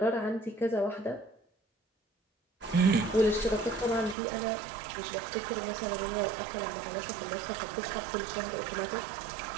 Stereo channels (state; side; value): drops out; left; at 4.2 s